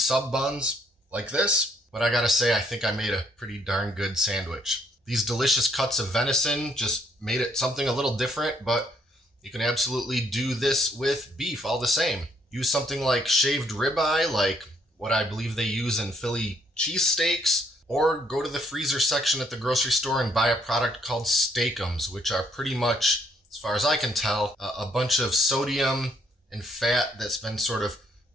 buns like this. But I gotta say, I think I made a pretty darn good sandwich. These delicious cuts of venison just made it something a little different, but you can absolutely do this with beef all the same. Use something like shaved ribeye, like what I believe they use in Philly cheesesteaks, or go to the freezer section at the grocery store and buy a product called Steakums, which are pretty much, as far as I can tell, a bunch of sodium and fat that's been sort of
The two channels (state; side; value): normal; both; correlation 0.69